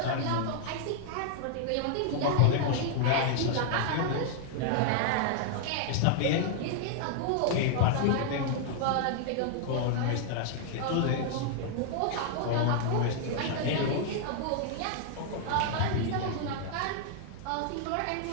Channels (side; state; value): both; different; correlation -0.01